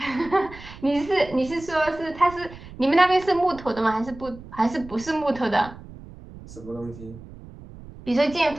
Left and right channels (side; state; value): right; noise; rumble, 17 dB below the sound